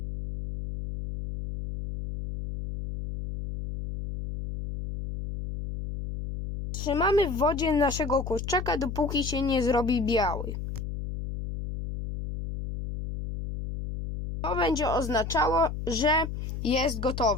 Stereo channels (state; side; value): noise; left; hum, 6 dB below the sound